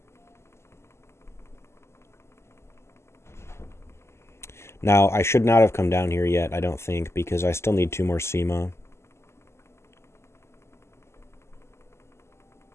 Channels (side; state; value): right; late; 0.13 ms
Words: Now I should not have come down here yet. I don't think, because I still need 2 more Seema.